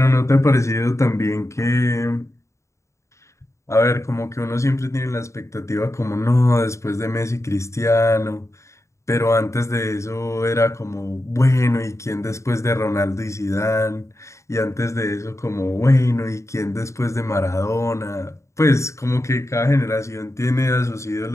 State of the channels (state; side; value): late; right; 0.14 ms